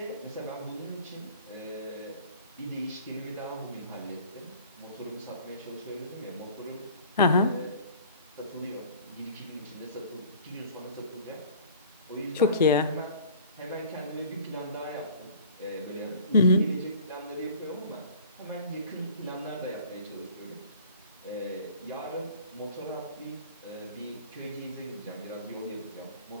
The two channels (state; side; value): inverted; both; correlation -0.47